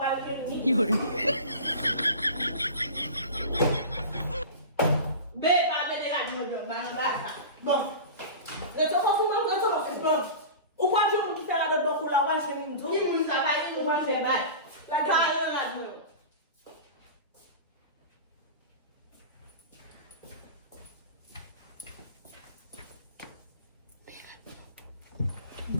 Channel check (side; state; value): both; inverted; correlation -0.32